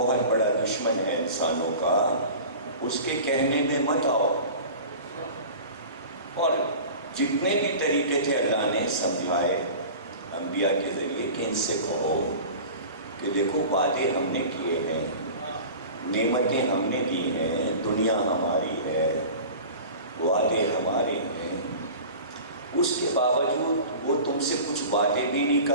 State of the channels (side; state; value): both; inverted; correlation -0.38